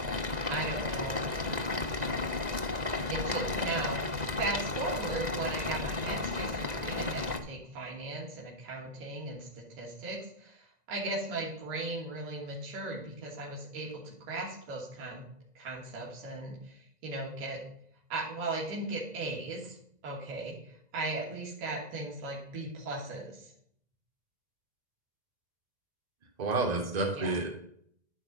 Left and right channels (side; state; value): left; late; 2.0 ms